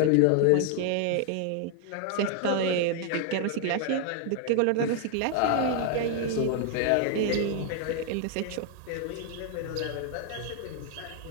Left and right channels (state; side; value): different; both; correlation 0.00